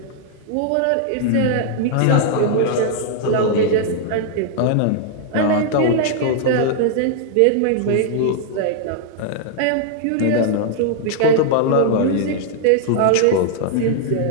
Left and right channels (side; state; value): both; different; correlation -0.01